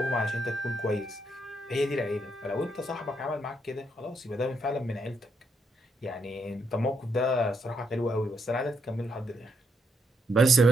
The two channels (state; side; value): normal; both; correlation 0.77